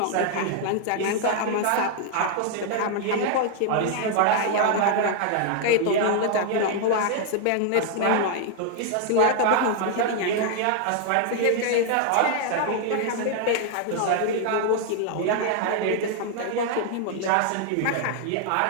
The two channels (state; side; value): different; both; correlation 0.00